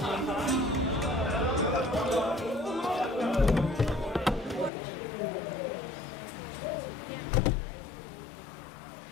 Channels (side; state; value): right; drops out; at 4.7 s